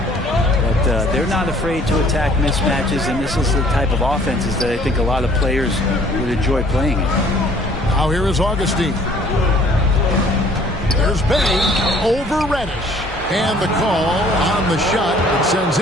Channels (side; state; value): both; normal; correlation 0.57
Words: But they're not afraid to attack mismatches, and this is the type of offenses that I think a lot of players would enjoy playing in. Now here is Augustine. There's Bey over Reddish. And the call on the shot that sends